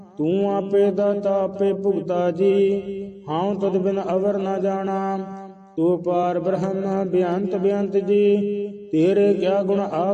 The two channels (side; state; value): both; identical; correlation 1.00